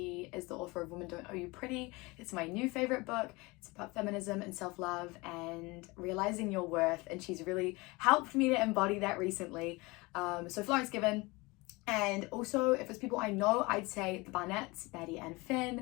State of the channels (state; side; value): quieter; right; 24.1 dB